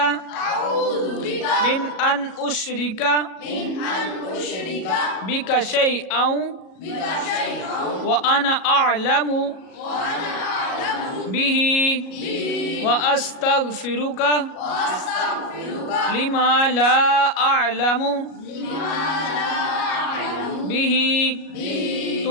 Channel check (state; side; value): late; right; 37 ms